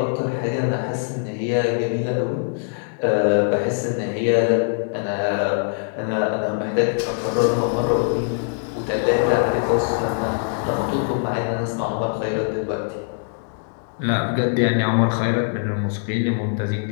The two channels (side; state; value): right; silent; digital silence